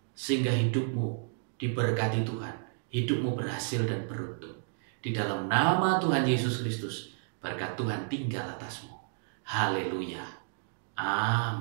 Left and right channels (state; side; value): silent; left; digital silence